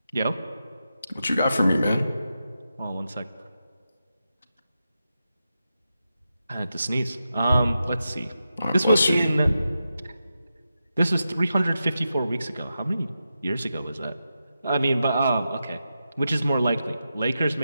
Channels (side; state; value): both; inverted; correlation -0.89